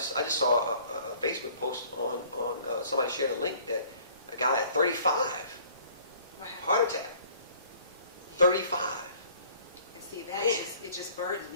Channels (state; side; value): inverted; both; correlation -0.54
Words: saw a Facebook post on somebody shared a link that a guy at 35, What happened? heart attack. 35. And see, that Man. it just burdens